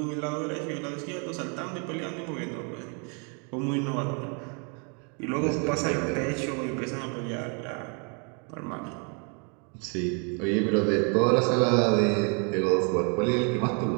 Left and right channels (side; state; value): left; quieter; 36.8 dB